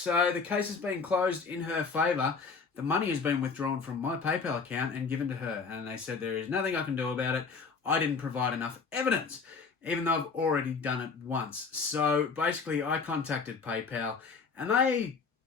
the case has been closed in her favour. The money has been withdrawn from my PayPal account and given to her. And they said there is nothing I can do about it. I didn't provide enough evidence, even though I've already done it once. So basically, I contacted PayPal and they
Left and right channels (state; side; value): quieter; right; 5.0 dB